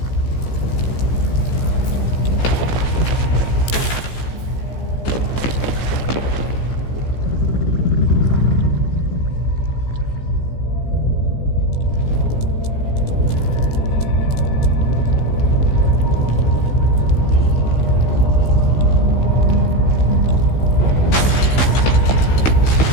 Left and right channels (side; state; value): right; late; 15 ms